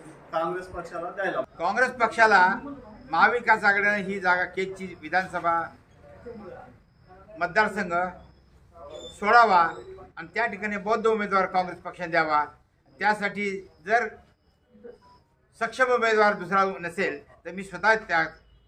काँग्रेस पक्षाला द्यायला। काँग्रेस पक्षाला महाविकास आघाडीने ही जागा केजची विधानसभा मतदारसंघ सोडावा आणि त्या ठिकाणी बौद्ध उमेदवार काँग्रेस पक्षाने द्यावा। त्यासाठी जर सक्षम उमेदवार दुसरा नसेल तर मी स्वतः त्या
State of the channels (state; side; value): identical; both; correlation 1.00